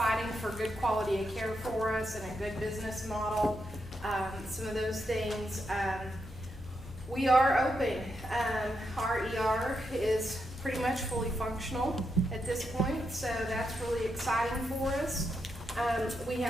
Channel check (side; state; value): both; normal; correlation 0.83